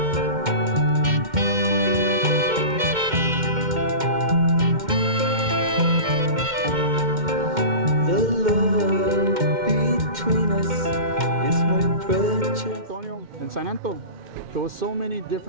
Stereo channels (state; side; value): late; left; 2.1 ms